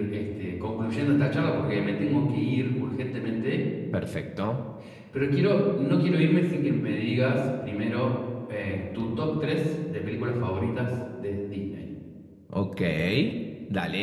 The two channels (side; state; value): both; identical; correlation 1.00